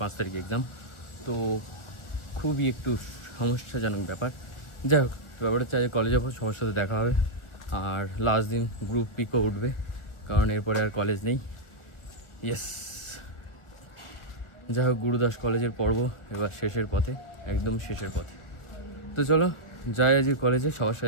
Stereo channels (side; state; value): right; late; 1.4 ms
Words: 5 তারিখে এক্সাম। তো খুবই একটু সমস্যাজনক ব্যাপার। যাই হোক, ব্যাপার হচ্ছে আজ কলেজে যাবো, সবার সাথে দেখা হবে, আর লাস্ট দিন গ্রুপ পিকও উঠবে, কারণ এরপরে আর কলেজ নেই। ইয়েস, যাই হোক, গুরুদাস কলেজের পর্ব এবার শেষের পথে, একদম শেষের পথে। তো চলো যাই আজ কলেজে, সবার